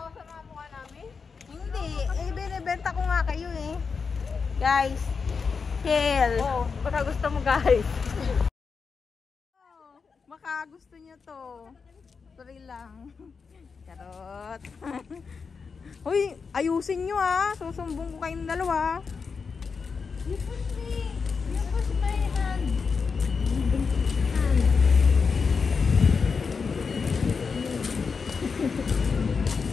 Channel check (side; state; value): right; quieter; 5.3 dB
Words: sa mga mukha namin? Hindi, binibenta ko nga kayo eh. Guys, chill. Baka gusto mo guys. Baka gusto niyo to. Sorry lang. Charot. Uy, ayusin nyo susumbong ko kayong dalawa. You push my hand.